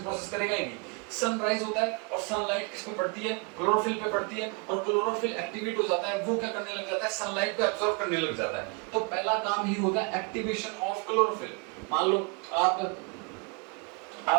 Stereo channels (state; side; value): quieter; left; 31.5 dB